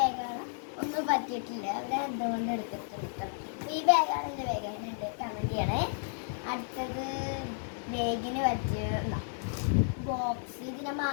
ഒന്നും പറ്റിയിട്ടില്ല. അവിടെ എന്തുകൊണ്ട് എടുത്തിട്ടുണ്ട്. ഈ ബാഗാണ് എൻ്റെ ബാഗ്, അതിനുണ്ട് കമൻറ്റ് ചെയ്യണേ. അടുത്തത് ബാഗിന് പറ്റിയ ബോക്സ്, ഇതിൻ്റെ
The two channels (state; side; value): silent; right; digital silence